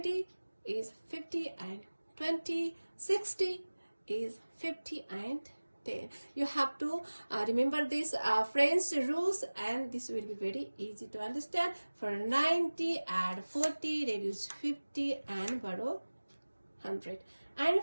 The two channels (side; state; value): both; inverted; correlation -1.00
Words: is 50 and 20. 60 is 50 and 10. You have to remember this French rules, and this will be very easy to understand. For 90, add 40, reduce 50 and borrow 100. And